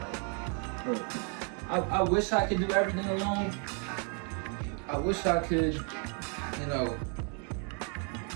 look, I wish I could do everything alone. I wish I could, you know,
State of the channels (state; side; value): quieter; left; 38.9 dB